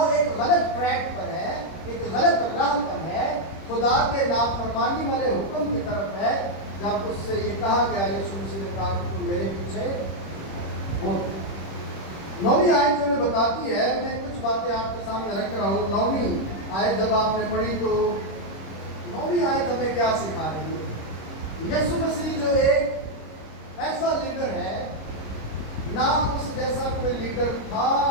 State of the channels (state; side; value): late; right; 26 ms